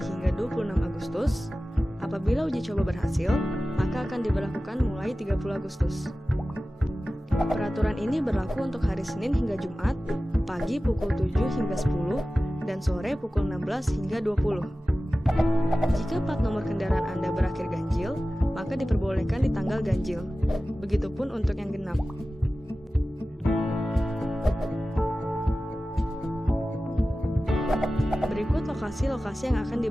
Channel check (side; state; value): both; normal; correlation 0.95